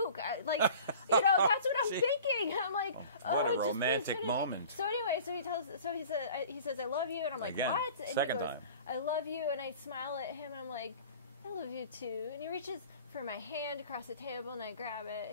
That's what I'm See? thinking. I'm like, what a just please romantic finish it." moment. So anyway, he says, I love you, and I'm like, Again, what? And second he goes, time. I love you, and I smile at him, and I'm like, I love you too. And he reaches for my hand across the table, and I grab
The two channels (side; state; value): both; inverted; correlation -0.44